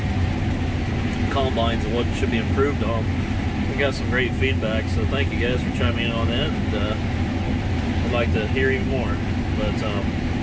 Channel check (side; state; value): both; identical; correlation 1.00